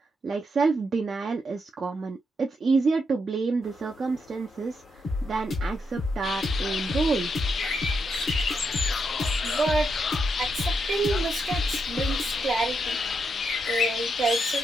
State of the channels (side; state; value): both; normal; correlation 0.81